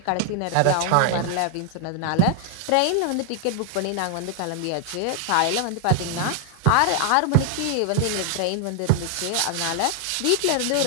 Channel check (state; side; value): different; both; correlation 0.00